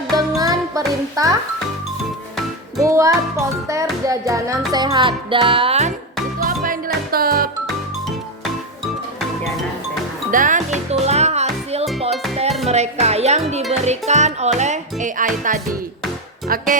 dengan perintah buat poster jajanan sehat. Dan itu apa yang di laptop? Jajanan sehat. Dan itulah hasil poster mereka yang diberikan oleh AI tadi.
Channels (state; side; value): normal; both; correlation 0.10